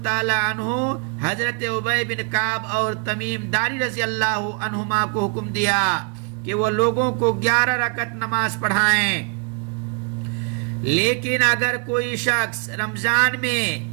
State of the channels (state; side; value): quieter; left; 32.7 dB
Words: تعالیٰ عنہ حضرت ابی بن کعب اور تمیم داری رضی اللہ عنہما کو حکم دیا کہ وہ لوگوں کو 11 رکعت نماز پڑھائیں. لیکن اگر کوئی شخص رمضان میں